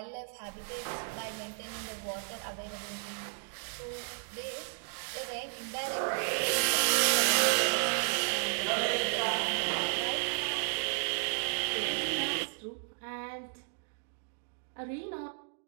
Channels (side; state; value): left; silent; digital silence